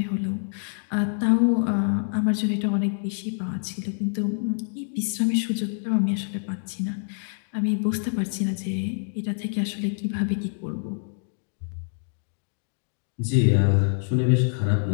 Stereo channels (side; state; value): right; silent; digital silence